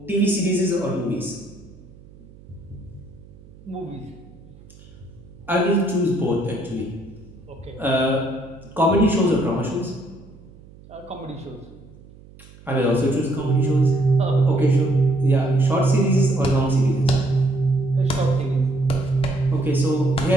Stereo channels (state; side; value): noise; right; hum, 22 dB below the sound